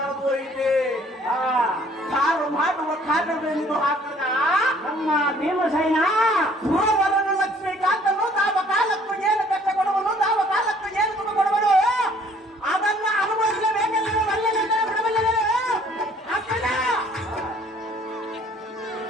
ಇದೆ. ಕಾರು ಮಾಡುವ ಕಾರ್ಯವೆಂದು ಹಾಕದ ತಮ್ಮ ಭೀಮಸೇನ ಸುರವರನು ಲಕ್ಷ್ಮೀಕಾಂತನು ತಾವ ಕಾಲಕ್ಕೂ ಏನು ಕಷ್ಟ ಕೊಡುವನು ತಾವ ಕಾಲಕ್ಕೂ ಏನು ಸುಖ ಕೊಡುವನು ಅದನ್ನ ಅನುಭವಿಸಬೇಕೆಂದು ಒಳ್ಳೆಯ ಬಿಡಬಲ್ಲವೇ ಅಕ್ಕನ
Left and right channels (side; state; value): both; normal; correlation 0.58